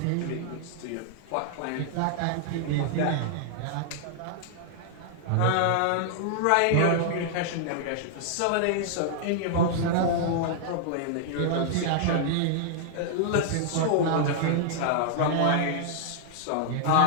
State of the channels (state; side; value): different; both; correlation -0.01